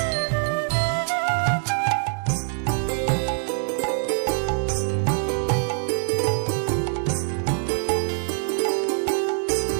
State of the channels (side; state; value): left; silent; 63 dB below the other